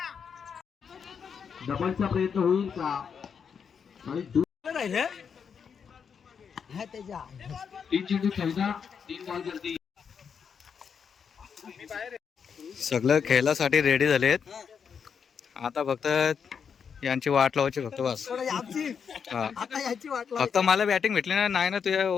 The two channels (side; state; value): right; quieter; 6.7 dB